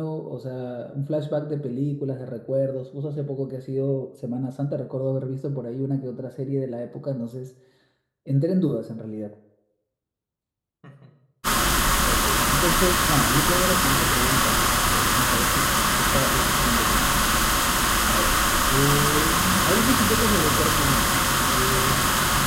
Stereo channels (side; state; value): both; identical; correlation 1.00